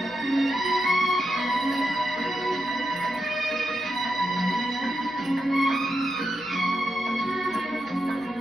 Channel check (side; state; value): left; noise; hum, 27 dB below the sound